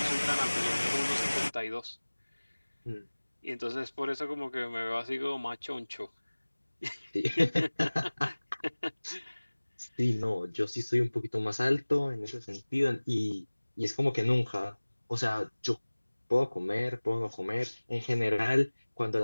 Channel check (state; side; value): inverted; both; correlation -1.00